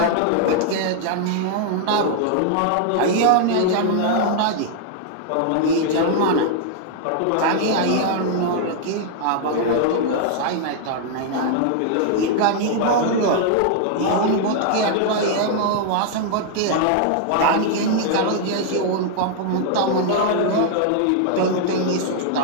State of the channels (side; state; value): both; different; correlation -0.01